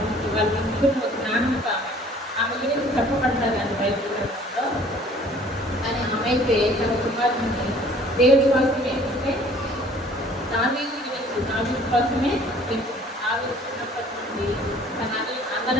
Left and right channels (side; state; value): both; normal; correlation 0.54